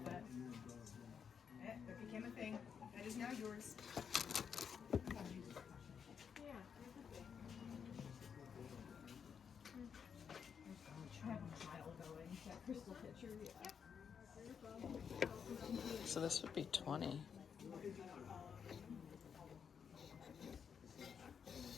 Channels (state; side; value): quieter; right; 7.1 dB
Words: it. That became a thing. That is now yours. Crystal pitcher, yeah. So this would be 20.